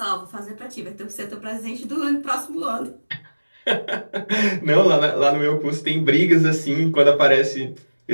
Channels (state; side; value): inverted; both; correlation -1.00